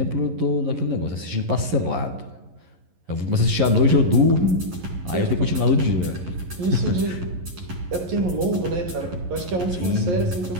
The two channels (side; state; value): left; late; 11 ms